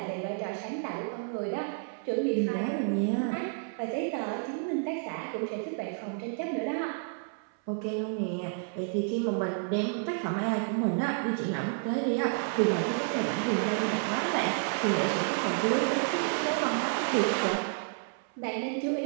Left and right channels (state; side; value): silent; left; 58 dB below the other